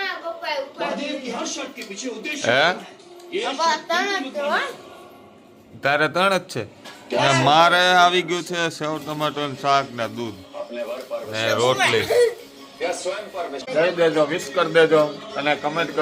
તારે 3 જ છે. મારે આવી ગયું છે સેવ ટમાટર શાક ને દૂધ ને રોટલી. કહી દેજો, વિશ કરી દેજો અને કમેન્ટ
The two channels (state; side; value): identical; both; correlation 1.00